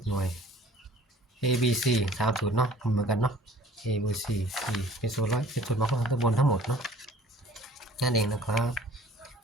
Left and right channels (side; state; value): both; normal; correlation 0.51